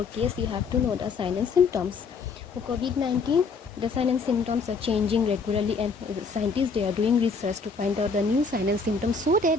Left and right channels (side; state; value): right; quieter; 4.7 dB